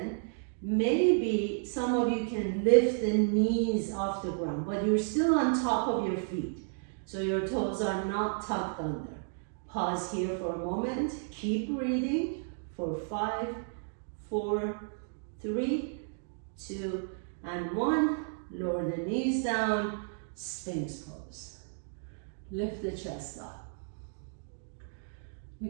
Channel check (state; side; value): silent; left; digital silence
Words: Maybe some of you can lift the knees off the ground, but you're still on top of your feet. So your toes are not tucked under. Pause here for a moment. Keep breathing for 5, 4, 3, 2, and 1. Lower the knees down, Sphinx pose. Lift the chest up.